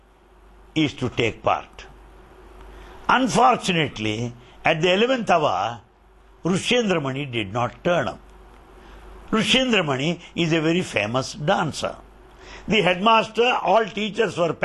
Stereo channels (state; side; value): identical; both; correlation 1.00